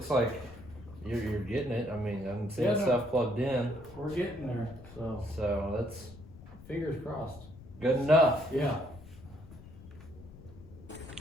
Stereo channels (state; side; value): noise; left; rumble, 18 dB below the sound